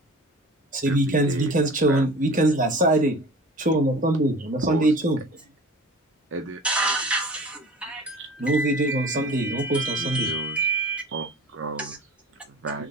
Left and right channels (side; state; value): both; normal; correlation 0.41